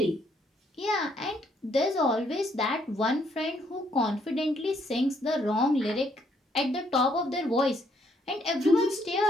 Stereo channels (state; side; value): normal; both; correlation 0.69